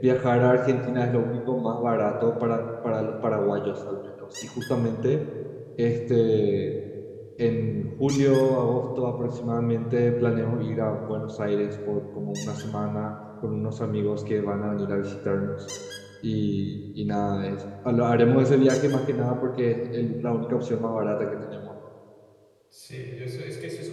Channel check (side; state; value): both; identical; correlation 1.00